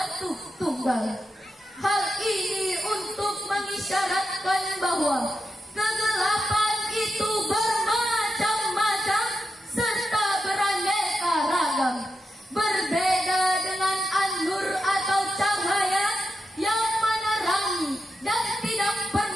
tunggal. Hal ini untuk mengisyaratkan bahwa kegelapan itu bermacam-macam serta beraneka ragam, berbeda dengan an-nur atau cahaya yang menerangi dan tidak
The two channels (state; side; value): normal; both; correlation 0.88